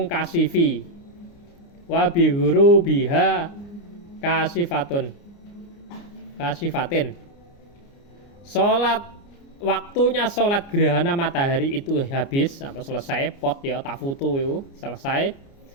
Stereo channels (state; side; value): late; right; 29 ms